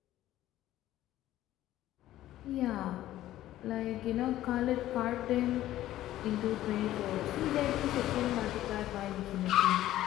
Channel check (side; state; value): right; quieter; 14.0 dB